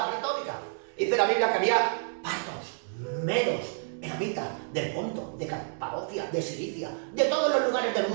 pletórica. Dice la Biblia que había partos, medos, elamitas, del Ponto, de Capadocia, de Cilicia, de todos los lugares del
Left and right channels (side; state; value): left; silent; digital silence